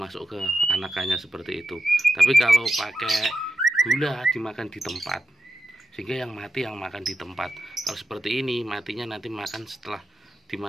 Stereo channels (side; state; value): both; normal; correlation 0.89